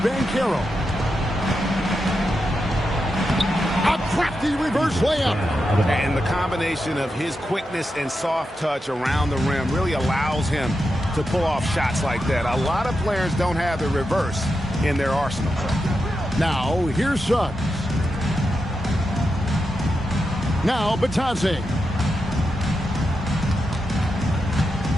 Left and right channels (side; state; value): both; normal; correlation 0.87